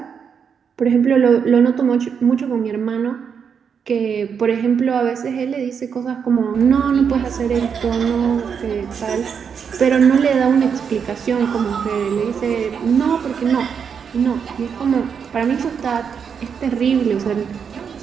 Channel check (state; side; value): quieter; left; 6.8 dB